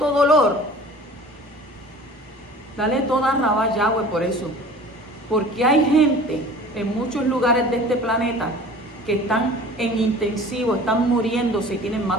dolor, dale toda rabá Yahweh por eso. Porque hay gente en muchos lugares de este planeta que están en intensivo, están muriéndose y tienen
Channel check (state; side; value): normal; both; correlation 0.43